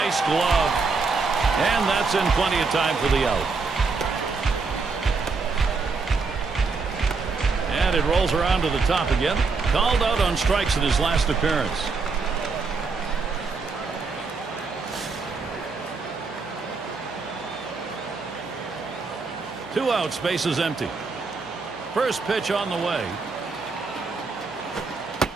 glove. And that's in plenty of time for the out. And it rolls around to the top again. Called out on strikes in his last appearance. Two outs, bases empty. First pitch on the way.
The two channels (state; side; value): quieter; left; 4.4 dB